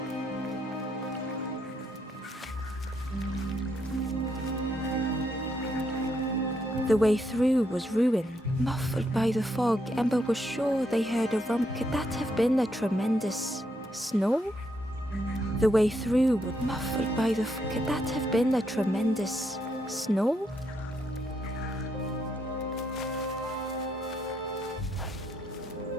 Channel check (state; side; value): normal; both; correlation 0.77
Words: The way through was ruin. Muffled by the fog, Ember was sure they heard a rump. Could that have been a tremendous snore? The way through was muffled by the Could that have been a tremendous snore?